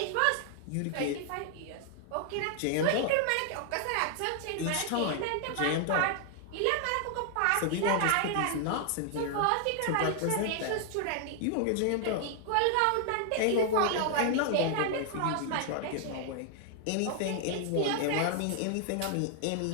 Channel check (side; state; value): both; different; correlation 0.00